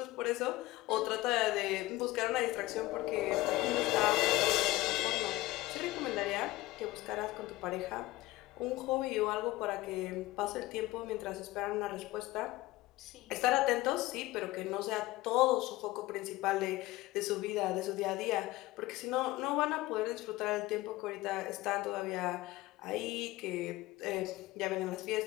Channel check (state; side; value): quieter; right; 18.5 dB